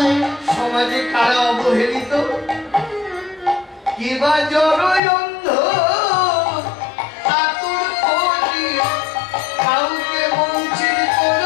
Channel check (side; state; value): right; drops out; at 5.0 s